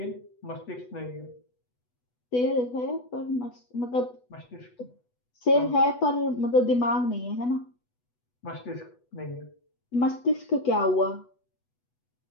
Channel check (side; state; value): right; late; 8.1 ms